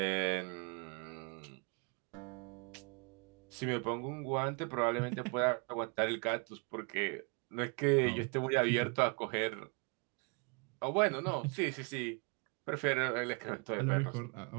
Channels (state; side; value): quieter; left; 33.8 dB